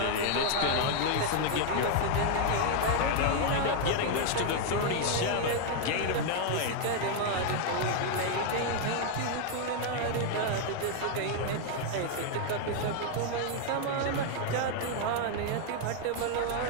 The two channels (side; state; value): both; different; correlation 0.00